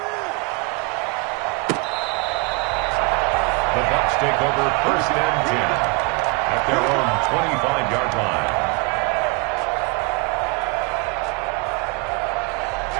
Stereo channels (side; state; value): left; quieter; 30.0 dB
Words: The Bucs take over 1st and 10. At their own 25-yard line.